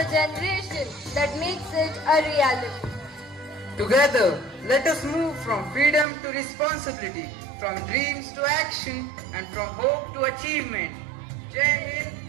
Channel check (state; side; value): drops out; left; at 6.1 s